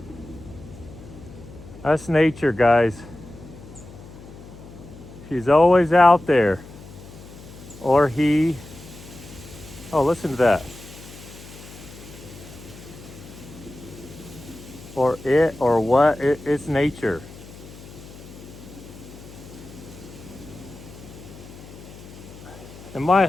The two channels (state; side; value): noise; left; hum, 17 dB below the sound